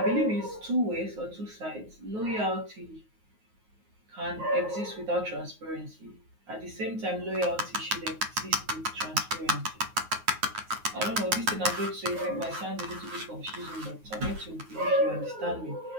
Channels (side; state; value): left; late; 9.4 ms